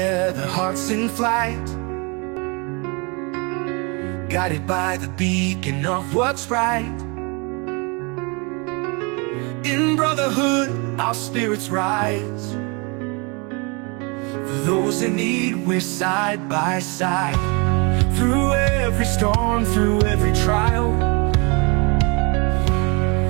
hearts in flight, guided by the beacon of what's right. In brotherhood, our spirits rise. For those in need, we're side by side. Through every storm, through every trial,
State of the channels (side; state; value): left; quieter; 30.9 dB